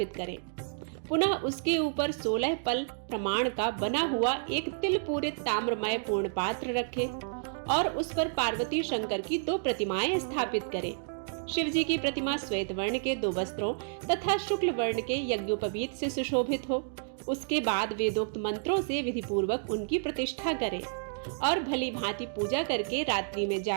करें। पुनः उसके ऊपर 16 पल प्रमाण का बना हुआ एक तिल पूरित ताम्रमय पूर्ण पात्र रखें और उस पर पार्वती शंकर की 2 प्रतिमाएं स्थापित करें। शिव जी की प्रतिमा श्वेत वर्ण के 2 वस्त्रों तथा शुक्ल वर्ण के यज्ञोपवीत से सुशोभित हो। उसके बाद वेदोक्त मंत्रों से विधि पूर्वक उनकी प्रतिष्ठा करें और भली भांति पूजा करके रात्रि में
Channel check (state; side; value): silent; left; digital silence